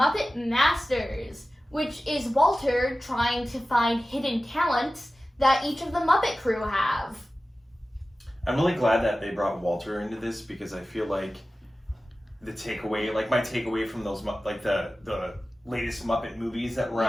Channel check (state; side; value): normal; both; correlation 0.96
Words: Masters, which is Walter trying to find hidden talents that each of the Muppet crew have. I'm really glad that they brought Walter into this because I feel like my takeaway from those, the latest Muppet movies that were